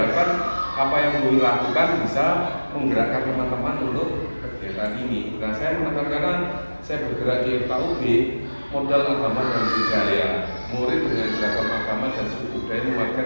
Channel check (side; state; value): both; inverted; correlation -1.00